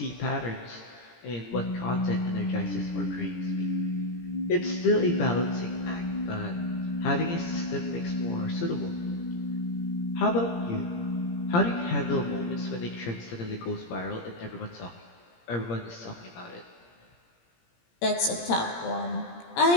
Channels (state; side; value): late; right; 17 ms